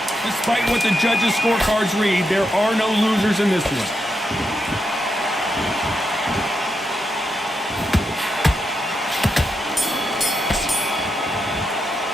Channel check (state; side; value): normal; both; correlation 0.84